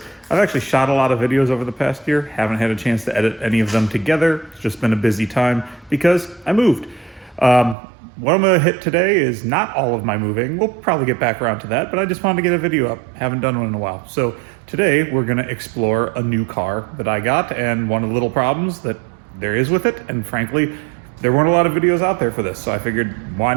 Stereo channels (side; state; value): left; drops out; at 7.8 s